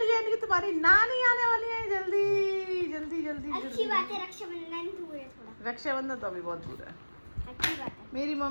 है, यानी कि तुम्हारी नानी आने वाली है। जल्दी जल्दी जल्दी अच्छी जल्दी। बात है, रक्षाबंधन दूर है थोड़ा। रक्षाबंधन तो अभी बहुत दूर है। अच्छी बात है। मेरी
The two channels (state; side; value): inverted; both; correlation -1.00